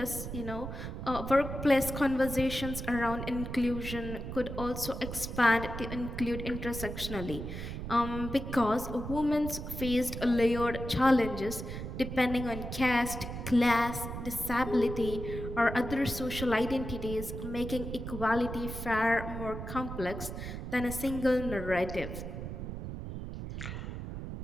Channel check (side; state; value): right; noise; rumble, 7 dB below the sound